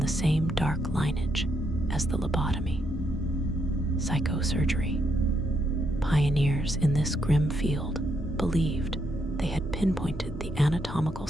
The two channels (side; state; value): both; normal; correlation 0.77